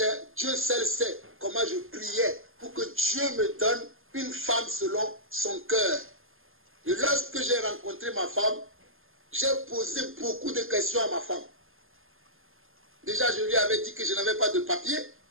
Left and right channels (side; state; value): left; late; 0.60 ms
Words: Dieu seul sait comment je priais pour que Dieu me donne une femme selon son cœur. Et lorsque j'ai rencontré ma femme, j'ai posé beaucoup de questions à ma femme. Déjà, je lui avais dit que je n'avais pas de papier.